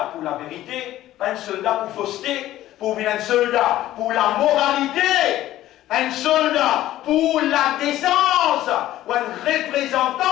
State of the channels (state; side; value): quieter; right; 14.3 dB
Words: pour la vérité, pas un soldat pour fausseté, pour venir un soldat pour la moralité. Un soldat pour la décence, ou un